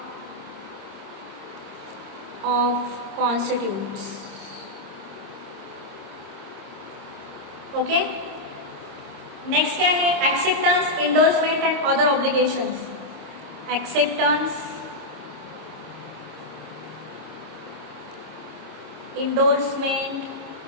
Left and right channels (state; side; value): late; left; 26 ms